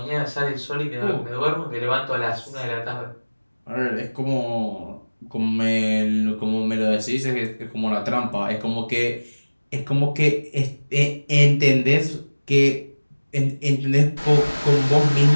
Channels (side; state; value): both; inverted; correlation -1.00